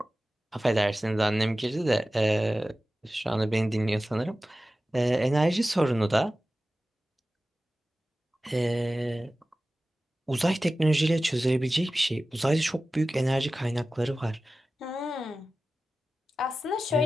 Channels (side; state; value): both; normal; correlation 0.95